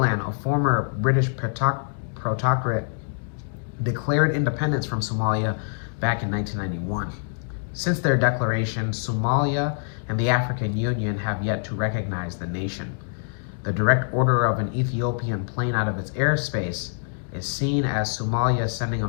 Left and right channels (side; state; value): right; silent; digital silence